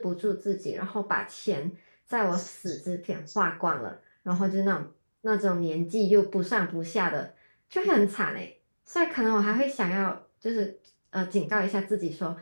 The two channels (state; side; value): inverted; both; correlation -1.00